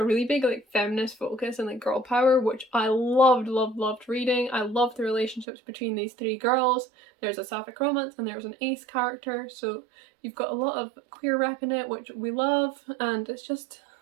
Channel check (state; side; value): drops out; left; at 5.5 s